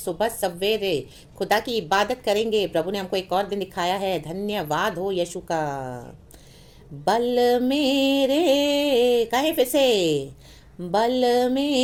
सवेरे खुदा की इबादत करेंगे। प्रभु ने हमको एक और दिन दिखाया है। धन्यवाद हो यीशु का। बल मेरे, कहें फिर से, बल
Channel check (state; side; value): identical; both; correlation 1.00